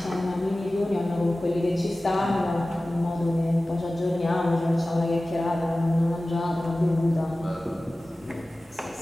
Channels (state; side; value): normal; both; correlation 0.97